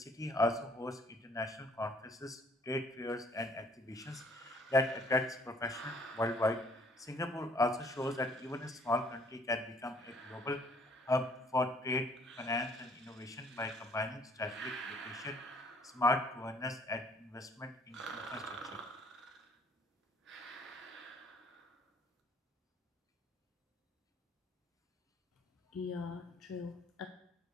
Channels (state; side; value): normal; both; correlation 0.61